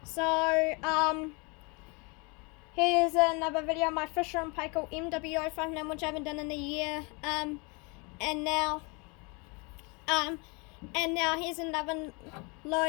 So here's another video of my Fisher and Paykel MW05 which I haven't done in a year. And now here's another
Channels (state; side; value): quieter; right; 30.5 dB